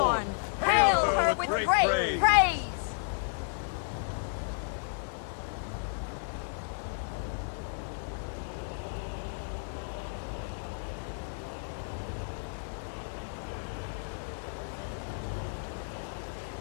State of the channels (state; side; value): silent; right; digital silence